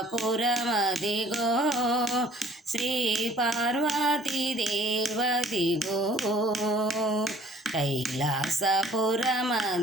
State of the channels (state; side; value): normal; both; correlation 0.56